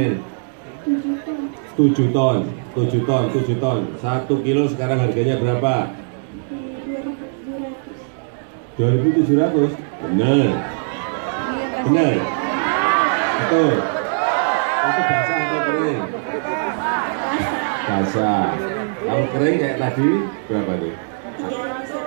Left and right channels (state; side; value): silent; left; digital silence